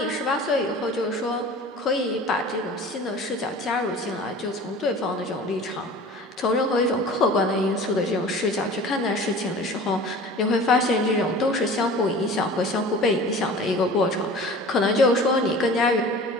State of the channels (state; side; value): normal; both; correlation 0.41